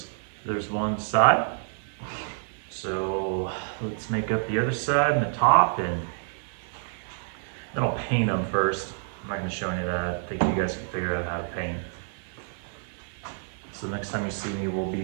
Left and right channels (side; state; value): left; silent; 59 dB below the other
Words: There's one side. So let's make up the other side and the top, and then I'll paint them first. I'm not going to show any of that. I think you guys can figure out how to paint. So the next time you see me, we'll